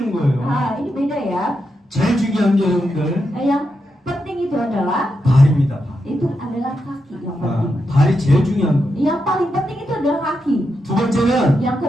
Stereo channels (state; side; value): normal; both; correlation 0.85